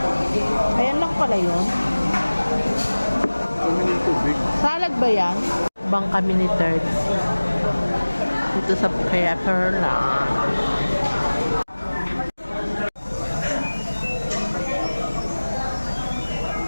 Ayan lang pala yun. Salad ba yan? Bang kami ni Third. Dito sa Paperland.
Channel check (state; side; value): inverted; both; correlation -1.00